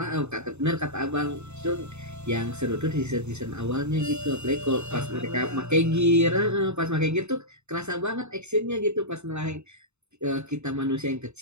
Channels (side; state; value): left; late; 0.82 ms